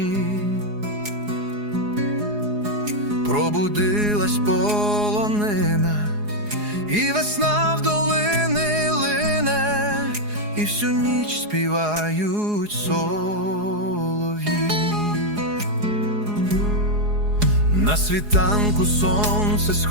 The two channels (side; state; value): left; late; 4.8 ms